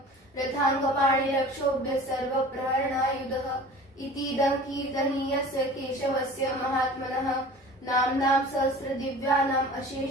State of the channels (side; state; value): both; normal; correlation 0.41